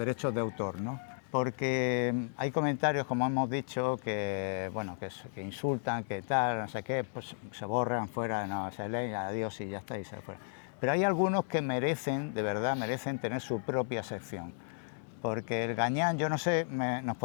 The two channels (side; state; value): right; silent; 55 dB below the other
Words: de autor, ¿no? Porque hay comentarios, como hemos dicho, que, bueno, que insultan, que tal, no sé qué, pues se borran fuera, no se leen, adiós y ya está, y se fuera. Pero hay algunos que merecen, de verdad, merecen tener su propia sección. Porque el gañán, yo no sé, ¿nos